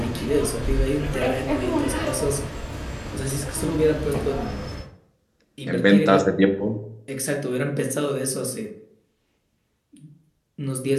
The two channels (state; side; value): identical; both; correlation 1.00